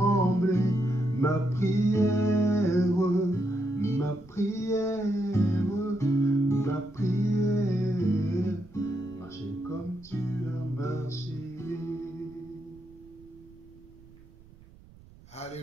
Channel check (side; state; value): right; noise; rumble, 24 dB below the sound